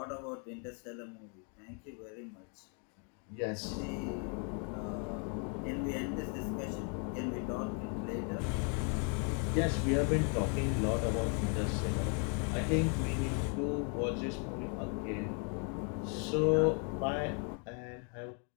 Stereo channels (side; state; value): right; quieter; 39.8 dB